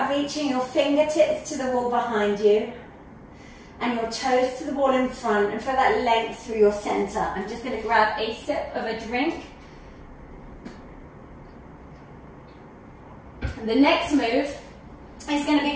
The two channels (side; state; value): both; identical; correlation 1.00